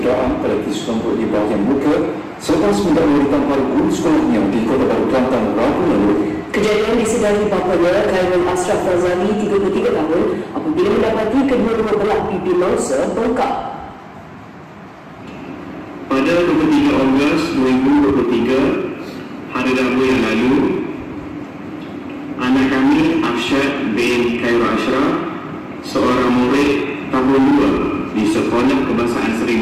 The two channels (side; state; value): both; identical; correlation 1.00